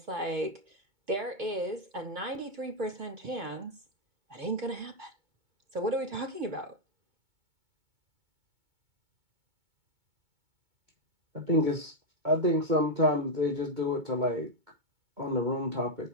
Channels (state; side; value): late; left; 2.2 ms